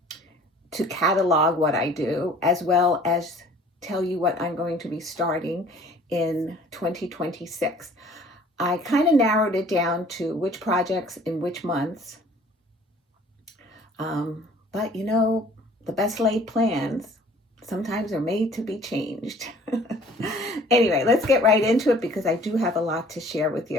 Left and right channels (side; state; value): both; normal; correlation 0.52